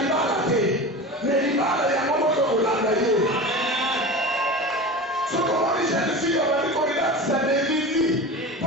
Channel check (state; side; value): normal; both; correlation 0.30